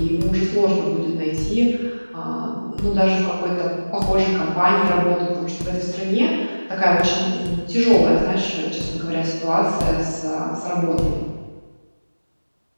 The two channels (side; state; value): both; inverted; correlation -1.00